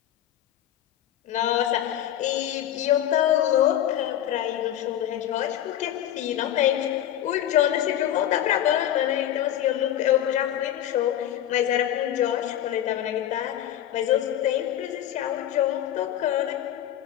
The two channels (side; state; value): right; quieter; 11.6 dB